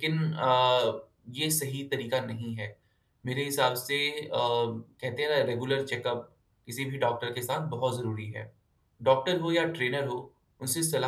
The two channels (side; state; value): both; identical; correlation 1.00